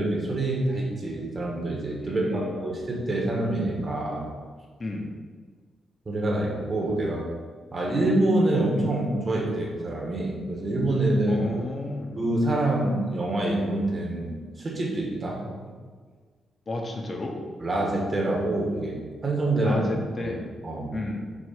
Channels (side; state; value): both; normal; correlation 0.80